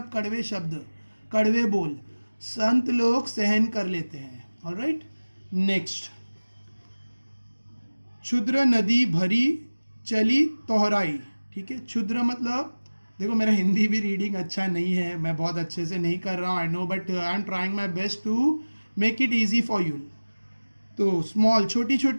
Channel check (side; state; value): both; inverted; correlation -1.00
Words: कड़वे शब्द, कड़वे बोल, संत लोग सहन कर लेते हैं। ऑलराइट, नेक्स्ट, क्षुद्र नदी भरी चली तोहराई। ठीक है, क्षुद्र मतलब, देखो मेरा हिंदी भी रीडिंग अच्छा नहीं है, मैं बहुत अच्छे से नहीं कर रहा हूँ, I know, but I am trying my best to make it easy for you. तो स्मॉल, छोटी